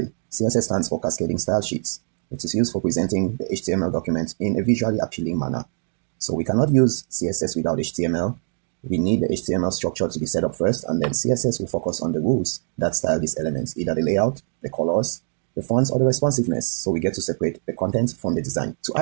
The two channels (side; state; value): left; silent; digital silence